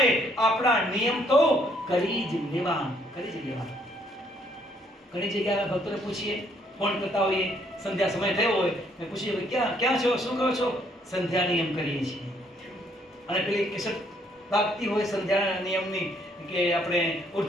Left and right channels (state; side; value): normal; both; correlation 0.67